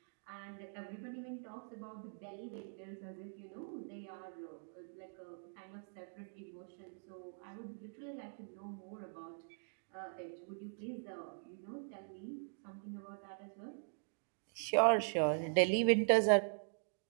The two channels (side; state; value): left; silent; digital silence